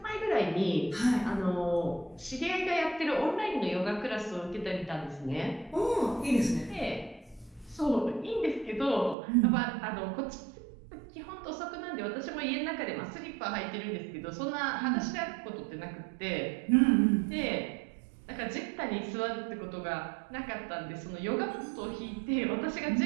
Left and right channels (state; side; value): drops out; left; at 9.2 s